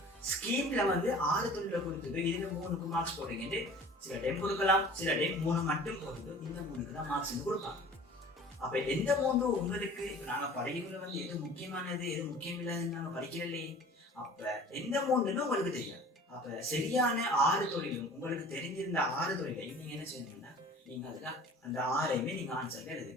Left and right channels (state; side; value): normal; both; correlation 0.44